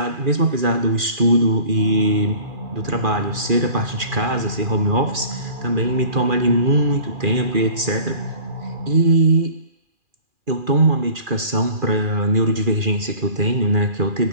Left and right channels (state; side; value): late; left; 2.4 ms